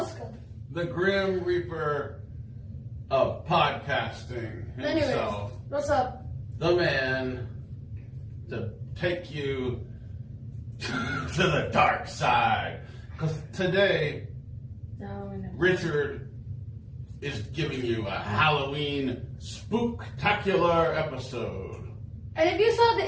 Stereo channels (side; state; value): both; identical; correlation 1.00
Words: The Grim Reaper of podcasting himself. Anyways, what's up? The man to take you to the dark side. Because today, Richard is giving you a Halloween spooktacular episode. And if you saw